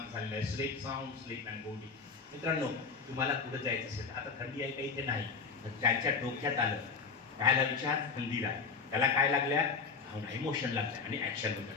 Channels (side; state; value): right; quieter; 5.1 dB